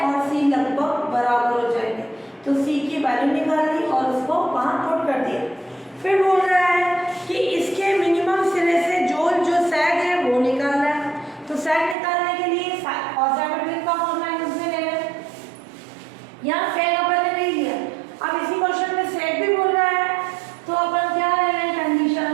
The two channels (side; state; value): left; drops out; at 12.0 s